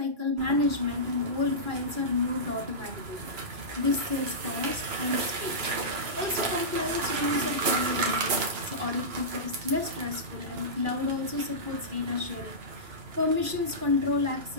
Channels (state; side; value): late; left; 3.0 ms